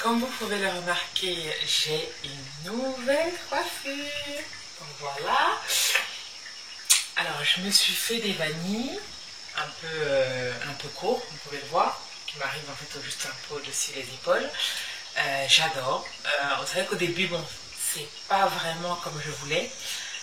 vous pouvez le remarquer, j'ai une nouvelle coiffure. Donc voilà. Alors, je me suis fait des vanilles un peu courts, vous pouvez le voir, qui m'arrivent en fait juste un peu au-dessus des épaules. J'adore. C'est vrai qu'au début, bon, c'est pas vraiment comme je voulais.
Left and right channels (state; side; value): identical; both; correlation 1.00